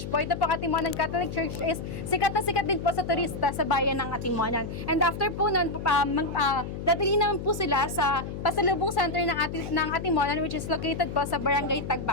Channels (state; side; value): noise; left; hum, 7 dB below the sound